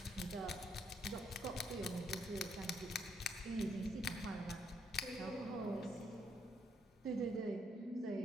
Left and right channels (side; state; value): both; normal; correlation 0.73